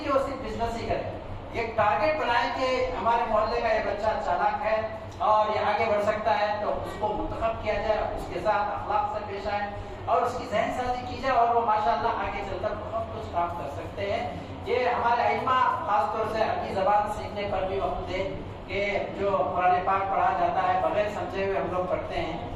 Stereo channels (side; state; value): both; identical; correlation 1.00